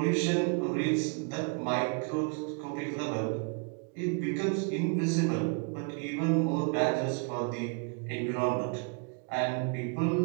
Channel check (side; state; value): left; quieter; 36.9 dB